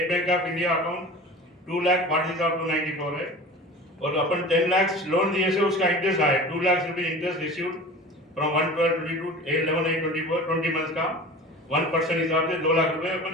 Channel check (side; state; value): both; normal; correlation 0.37